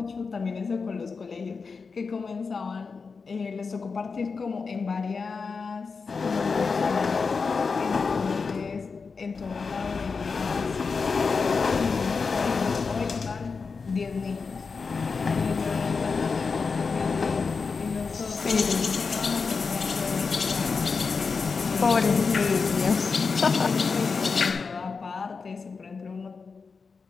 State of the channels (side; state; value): right; quieter; 4.9 dB